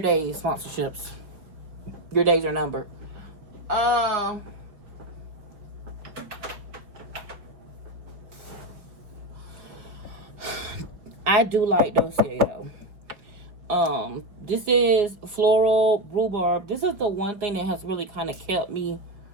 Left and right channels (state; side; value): late; left; 5.1 ms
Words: days, sponsorships. Your days are numbered. I do like Dossier though. This is floral rhubarb. This is the one thing that has really kind of kept me.